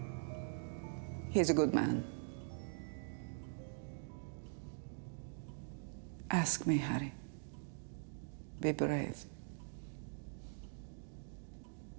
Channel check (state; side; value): silent; left; digital silence